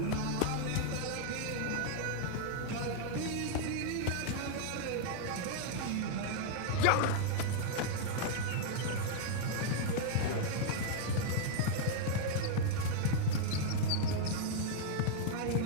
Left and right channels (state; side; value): different; both; correlation -0.01